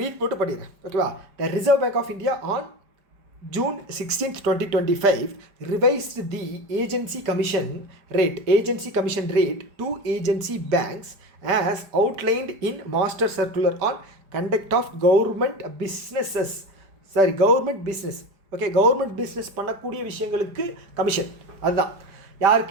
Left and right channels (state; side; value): late; left; 5.0 ms